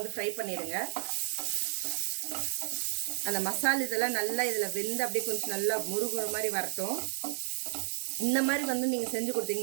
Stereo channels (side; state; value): left; silent; digital silence